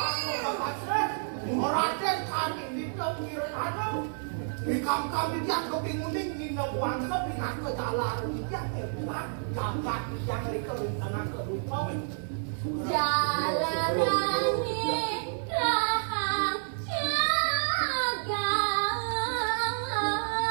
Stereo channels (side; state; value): left; silent; 58 dB below the other